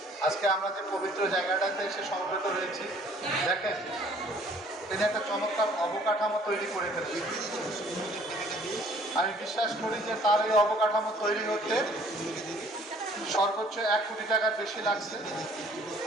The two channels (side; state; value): both; normal; correlation 0.57